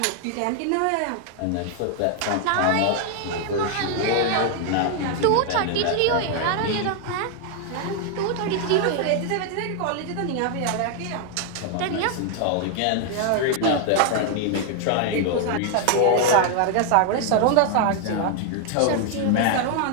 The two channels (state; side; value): different; both; correlation 0.00